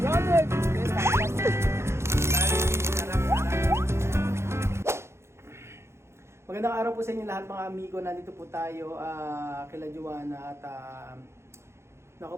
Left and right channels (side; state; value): left; late; 0.13 ms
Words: Magandang araw po sa inyo lahat mga amigo. Nandito po tayo kila Joanna at naku